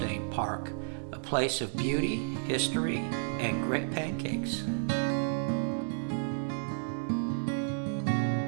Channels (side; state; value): left; silent; digital silence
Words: Park, a place of beauty, history, and great pancakes.